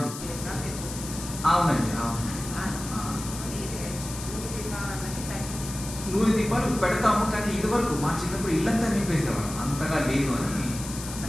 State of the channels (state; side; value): noise; left; hiss, 10 dB below the sound